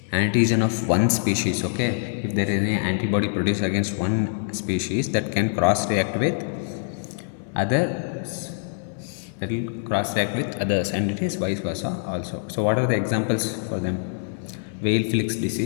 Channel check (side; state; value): right; silent; 62 dB below the other